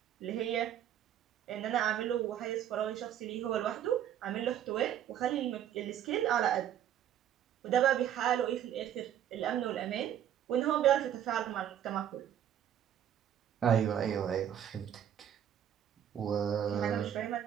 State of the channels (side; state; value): left; quieter; 10.3 dB